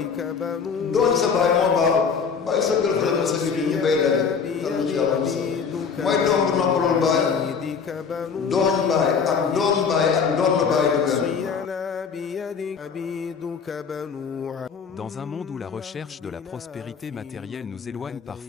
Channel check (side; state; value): right; quieter; 6.0 dB